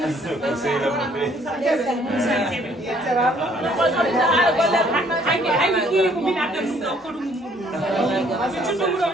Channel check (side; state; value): both; normal; correlation 0.62